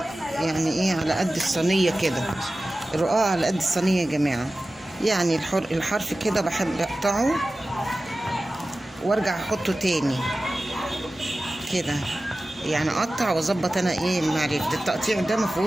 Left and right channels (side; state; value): both; normal; correlation 0.96